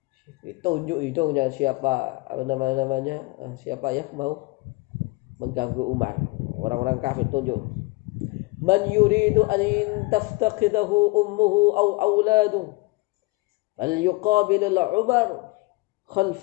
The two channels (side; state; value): right; quieter; 24.3 dB